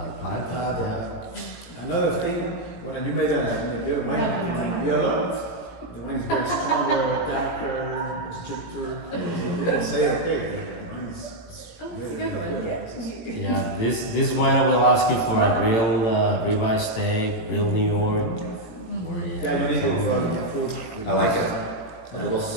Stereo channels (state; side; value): late; right; 18 ms